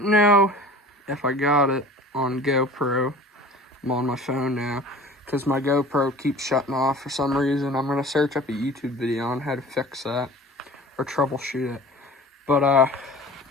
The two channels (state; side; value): normal; both; correlation 0.42